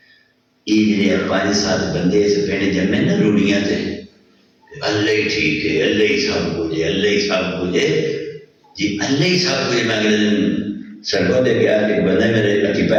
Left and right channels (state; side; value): identical; both; correlation 1.00